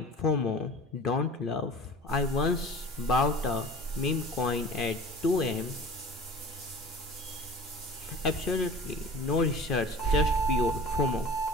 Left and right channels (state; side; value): normal; both; correlation 0.40